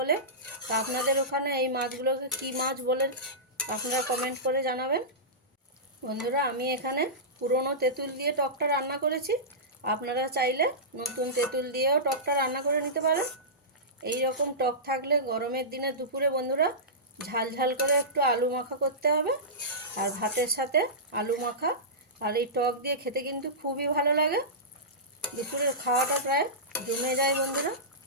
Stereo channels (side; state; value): both; normal; correlation -0.18